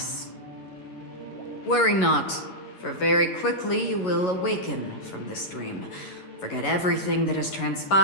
Worry not, for very quickly you will awaken from this dream. Forget everything that has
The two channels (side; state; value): right; late; 11 ms